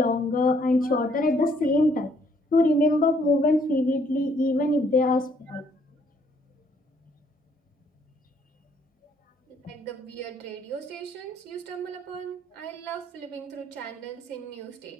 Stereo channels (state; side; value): normal; both; correlation 0.66